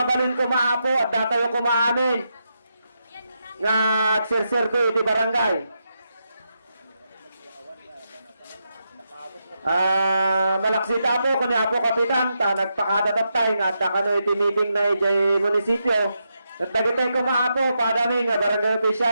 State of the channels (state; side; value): inverted; both; correlation -0.84